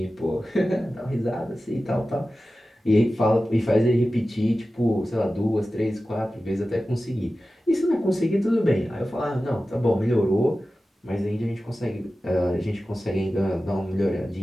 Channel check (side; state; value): both; normal; correlation 0.94